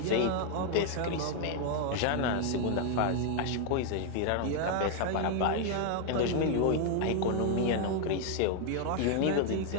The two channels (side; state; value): both; different; correlation 0.00